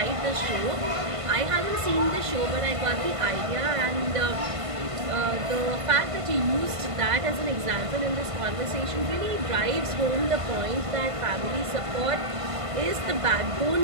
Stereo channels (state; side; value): late; left; 1.5 ms